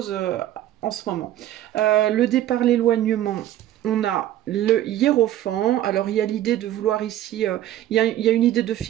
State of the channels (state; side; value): quieter; left; 12.8 dB